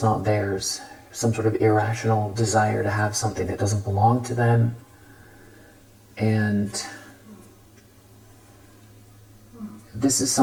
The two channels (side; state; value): both; identical; correlation 1.00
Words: not theirs, some sort of irrational desire to have something that doesn't belong to them. And this is